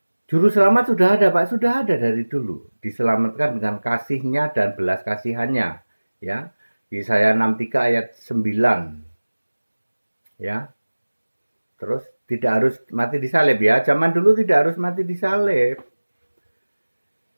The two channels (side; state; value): both; inverted; correlation -1.00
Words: Juru selamat sudah ada Pak, sudah ada dari dulu. Diselamatkan dengan kasihnya dan belas kasihannya. Ya, Yesaya 63 ayat 9. Ya, terus tidak harus mati disalib ya. Zaman dulu tidak harus mati disalib.